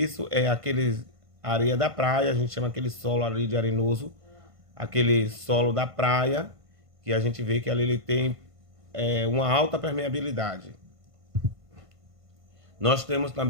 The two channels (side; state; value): left; late; 1.5 ms